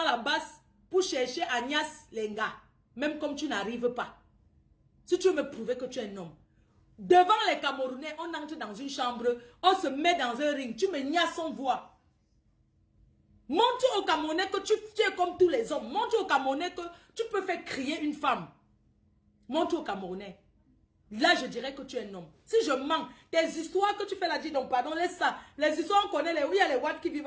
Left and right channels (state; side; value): identical; both; correlation 1.00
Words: la base pour chercher Agnès Lenga. Même comme tu n'arrives pas. Si tu veux me prouver que tu es un homme. Devant les Camerounais, on entre dans une chambre, on se met dans un ring. Tu me niaises sans voix. Montre aux Camerounais que tu es comme tous les hommes. Montre aux Camerounais que tu peux faire crier une femme. Montre aux Camerounais. Là, je dirais que tu es un homme. Si je mens, tes histoires que tu fais là, dis donc, pardon, laisse ça. Les histoires, on connaît les... Oui, il y a les Watt qui